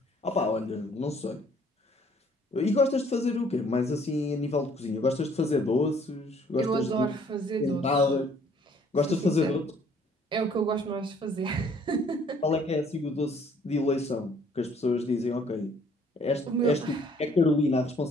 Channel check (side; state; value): both; normal; correlation 0.60